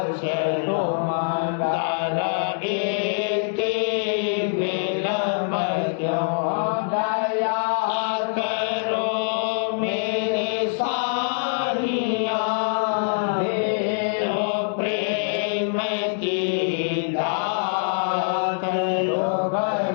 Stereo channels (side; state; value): right; silent; digital silence